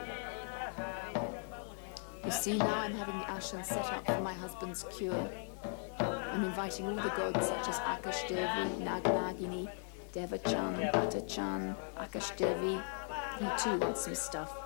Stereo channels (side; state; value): right; silent; 52 dB below the other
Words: You see, now I'm having the ashram set up for my husband's cure. I'm inviting all the gods such as Akash Devi, Nag Nagini, Devachan, Batachan, Akash Devi. He too wants some stuff,